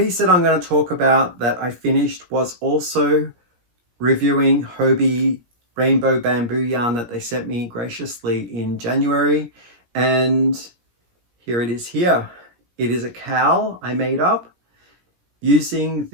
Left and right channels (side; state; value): left; late; 17 ms